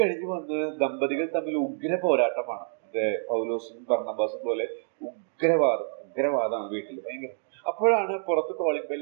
വന്ന് ദമ്പതികൾ തമ്മിൽ ഉഗ്ര പോരാട്ടമാണ്. പൗലോസും ബർന്നബാസും പോലെ ഉഗ്രവാദമാണ് വീട്ടിൽ, ഭയങ്കര. അപ്പോഴാണ് പുറത്ത് കോളിംഗ്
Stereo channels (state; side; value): silent; left; digital silence